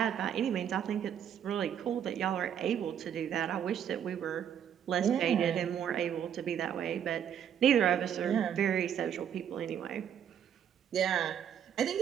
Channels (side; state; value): left; quieter; 9.0 dB